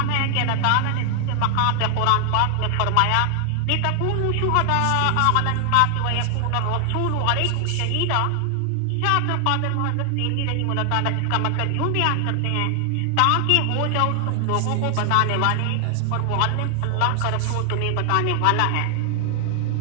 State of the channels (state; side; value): different; both; correlation 0.00